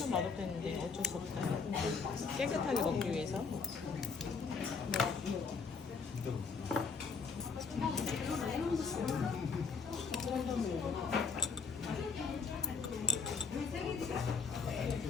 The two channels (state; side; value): quieter; right; 5.2 dB